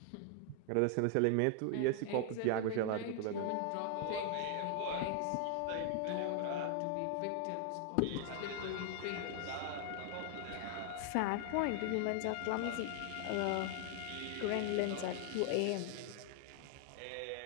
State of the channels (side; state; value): both; different; correlation 0.00